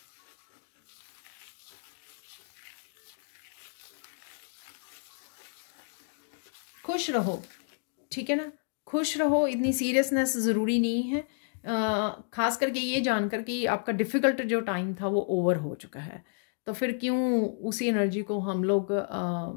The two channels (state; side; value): silent; right; digital silence